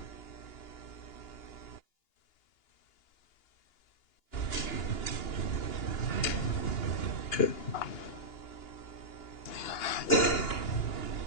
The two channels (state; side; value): late; right; 2.9 ms